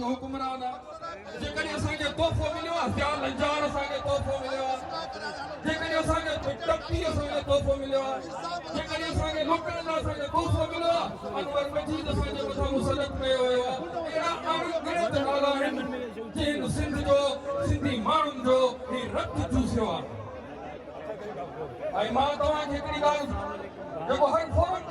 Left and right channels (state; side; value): identical; both; correlation 1.00